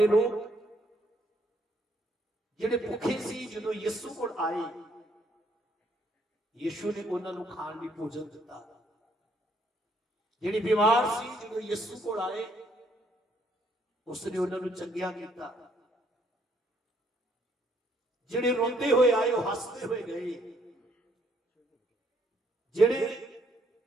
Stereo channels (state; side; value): normal; both; correlation 0.68